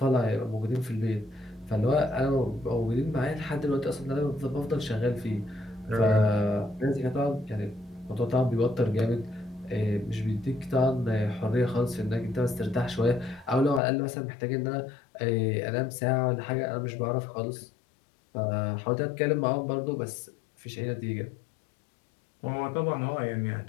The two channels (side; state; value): right; drops out; at 13.8 s